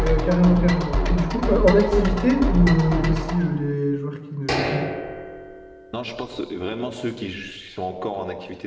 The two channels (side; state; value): both; identical; correlation 1.00